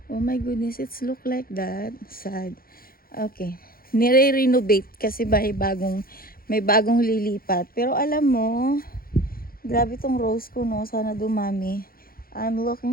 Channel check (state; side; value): late; right; 0.43 ms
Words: Oh my goodness, it's look like that. Sad. Okay. Nire-renovate kasi may bagong lilipat. Pero alam mo, grabe tong rose ko, no? Sana dumami. I'm